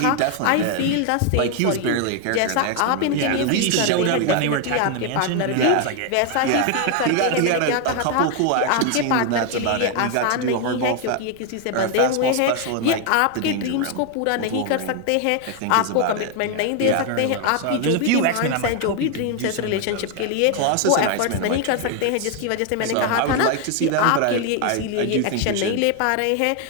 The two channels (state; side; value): different; both; correlation 0.01